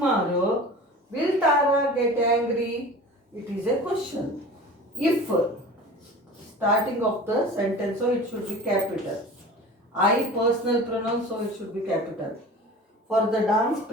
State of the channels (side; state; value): both; normal; correlation 0.38